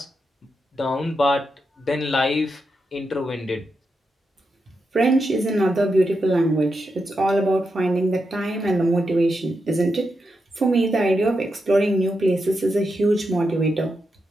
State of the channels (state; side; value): normal; both; correlation 0.86